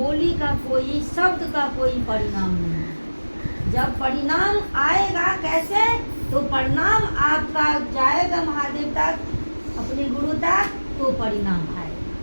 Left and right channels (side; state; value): both; inverted; correlation -1.00